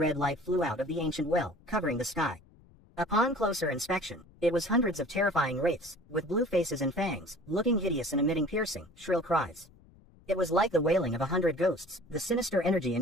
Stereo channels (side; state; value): left; noise; rumble, 27 dB below the sound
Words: light flew out of the ancient well, covering the sky. Upon closer inspection, it was hundreds of terrifying wraiths, with blue faces and fangs, looking hideous and emitting piercing, shrill cries. It was like the wailing of 100 ghosts, the sinister energy